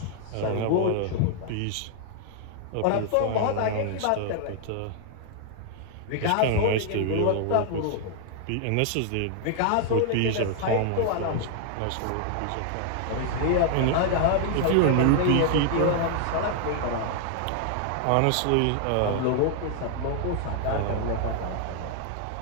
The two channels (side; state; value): both; different; correlation 0.00